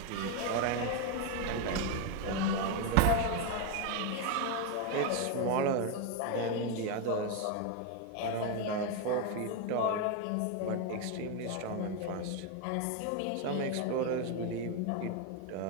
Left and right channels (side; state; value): both; different; correlation 0.01